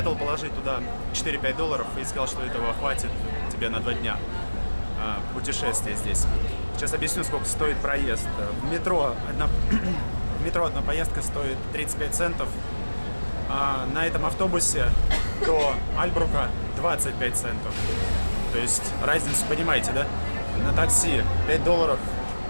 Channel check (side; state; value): both; inverted; correlation -1.00